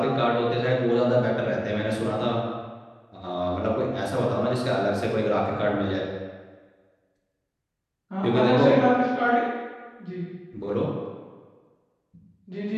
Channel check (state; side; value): identical; both; correlation 1.00